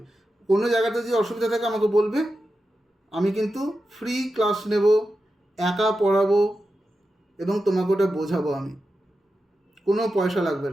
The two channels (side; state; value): both; normal; correlation 0.90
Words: কোনো জায়গাতে যদি অসুবিধা থাকে আমাকে বলবে, আমি কিন্তু ফ্রি ক্লাস নেব, একা পড়াবো এবং তোমাকে ওটা বোঝাবো। আমি কোনো পয়সা লাগবে